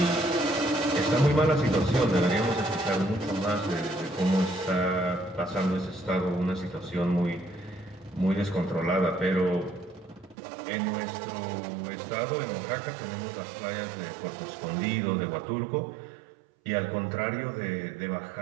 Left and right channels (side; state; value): left; drops out; at 10.4 s